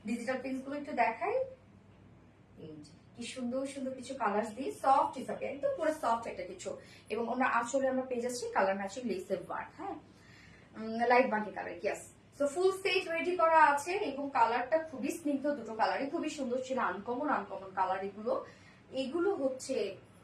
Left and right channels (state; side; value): identical; both; correlation 1.00